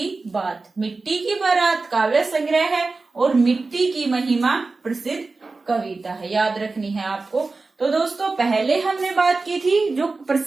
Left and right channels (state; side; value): quieter; left; 3.8 dB